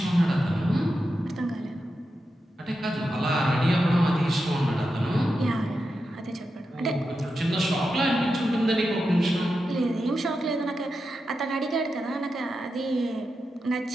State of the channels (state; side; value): normal; both; correlation 0.89